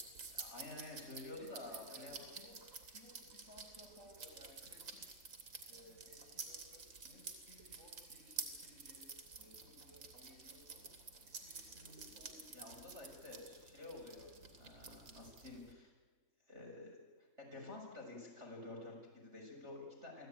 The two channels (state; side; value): late; left; 4.0 ms